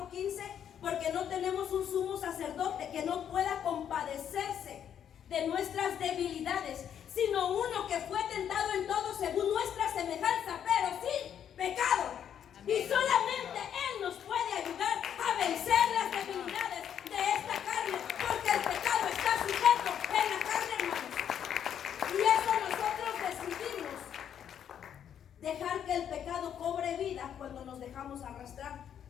porque no tenemos un sumo sacerdote que no pueda compadecerse de nuestras debilidades, sino uno que fue tentado en todo según nuestra semejanza, pero sin pecado. Y solamente Él nos puede ayudar a vencer las debilidades de esta carne, porque el pecado está sujeto en la carne, hermanos. Y eso nosotros decidimos dejar que el pecado cobre vida cuando nos dejamos arrastrar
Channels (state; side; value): quieter; right; 9.1 dB